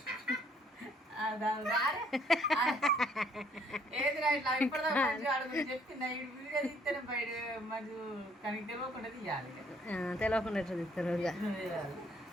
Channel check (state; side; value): normal; both; correlation 0.64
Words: ఏది ఇట్లా ఇప్పుడు చెప్తున్నా వీడియో తీస్తేనే బయట మరి కానీ తెలియకుండా తీయాలి. తెలియకుండా ఎట్లా తీస్తారు.